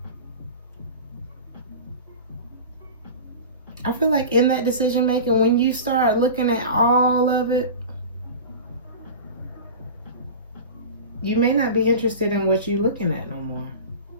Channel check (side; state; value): both; inverted; correlation -0.32